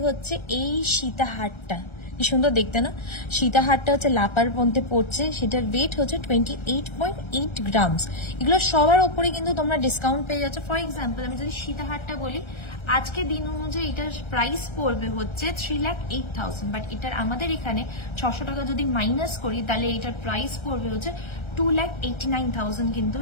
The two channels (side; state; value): right; late; 1.3 ms